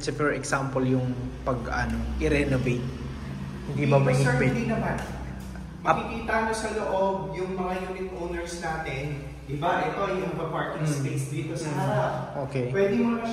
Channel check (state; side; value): identical; both; correlation 1.00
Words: say for example, yung i-renovate? Hindi ba mahigpit? Sir, hindi naman. Makikita nyo sa loob yung mga unit owners natin. Diba? Ito yung parking space dito sa harap. Pwede mo na